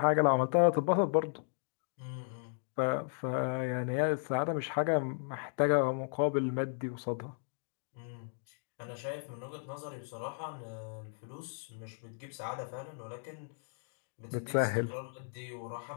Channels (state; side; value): silent; right; digital silence